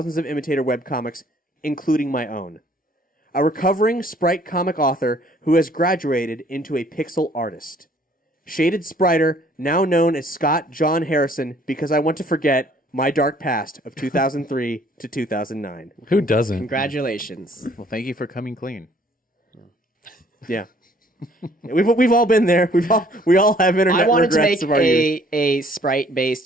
of imitator webcomics, including my own. A recovering Sprite comic author who has graduated into a pixel artist. Shaded Spriter, now known as Scott John Harrison, because I want to forget my dark past of 2003 to 2009. Who doesn't? Congratulations. Well, thank you for coming clean. Yeah. We've all been there. We all have internet I wanted to regrets make of our youth. a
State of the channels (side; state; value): both; normal; correlation 0.59